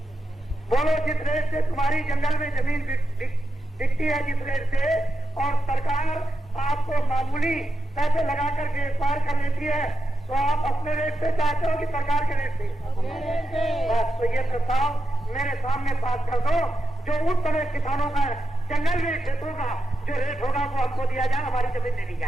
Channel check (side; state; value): both; normal; correlation 0.88